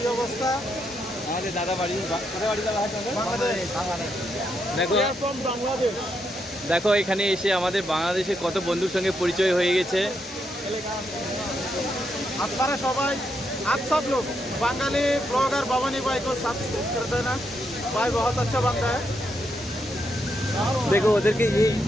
অবস্থা? আমাদের দাদা বাড়ি কোথায় বাড়ি দাদা? দেখো দেখো এখানে এসে আমাদের বাংলাদেশে কত বন্ধুর সঙ্গে পরিচয় হয়ে গেছে। আপনারা সবাই आप सब लोग बंगाली ब्लॉगर भवानी भाई को सब्सक्राइब कर देना। भाई बहुत अच्छा बंदा है। দেখো ওদেরকে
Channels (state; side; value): normal; both; correlation 0.80